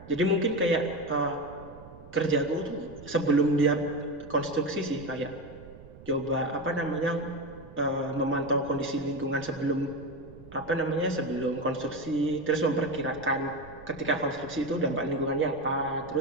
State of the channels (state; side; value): noise; right; rumble, 19 dB below the sound